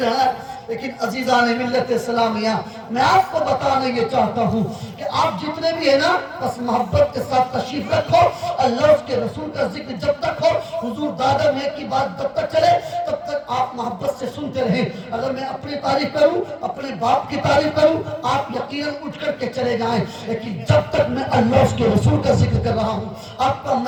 ہے۔ لیکن عزیزان ملت اسلامیہ، میں آپ کو بتانا یہ چاہتا ہوں کہ آپ جتنے بھی ہیں نا، بس محبت کے ساتھ تشریف رکھو، اللہ اس کے رسول کا ذکر جب تک ہو، حضور دادا میں کی بات جب تک چلے، تب تک آپ محبت سے سنتے رہیں۔ اگر میں اپنی تعریف کروں، اپنے باپ کی تعریف کروں، آپ یقیناً اٹھ کر کے چلے جائیں، لیکن جب تک میں اللہ اس کے رسول کا ذکر کر رہا ہوں، آپ کا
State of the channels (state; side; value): identical; both; correlation 1.00